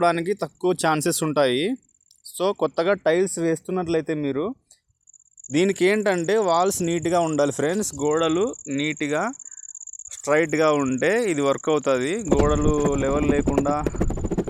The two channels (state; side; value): identical; both; correlation 1.00